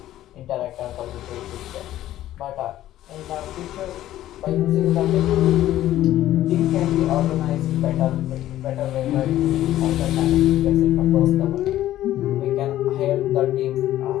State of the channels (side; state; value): right; quieter; 13.6 dB